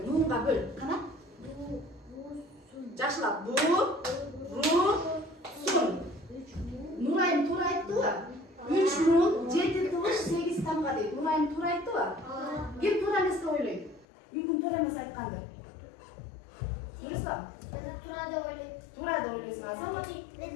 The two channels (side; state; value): right; drops out; at 14.1 s